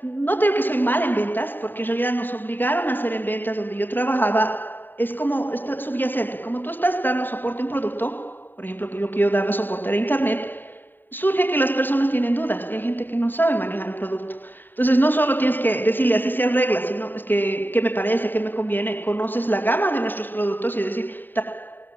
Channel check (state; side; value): late; right; 0.092 ms